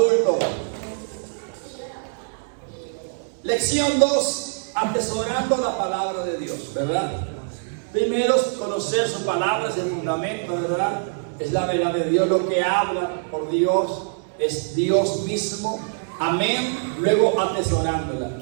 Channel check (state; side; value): silent; left; digital silence